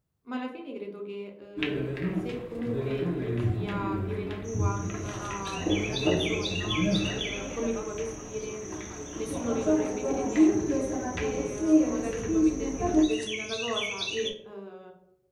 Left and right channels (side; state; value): both; identical; correlation 1.00